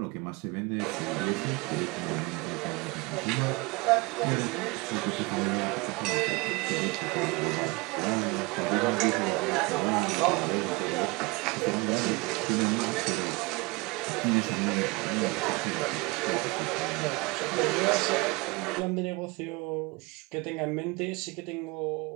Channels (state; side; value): quieter; left; 25.1 dB